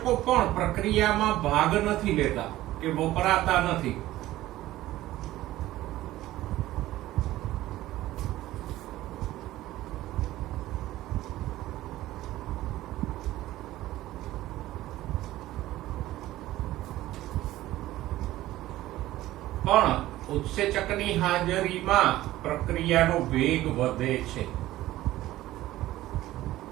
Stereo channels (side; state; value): left; quieter; 15.6 dB